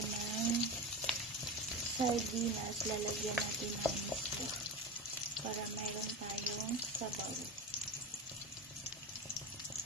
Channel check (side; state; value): both; normal; correlation 0.24